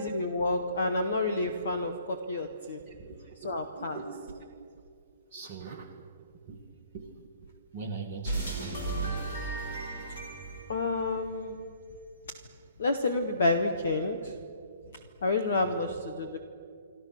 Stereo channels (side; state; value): both; inverted; correlation -0.59